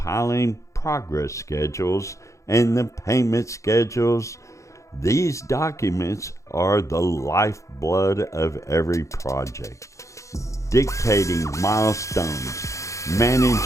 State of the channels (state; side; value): late; right; 0.15 ms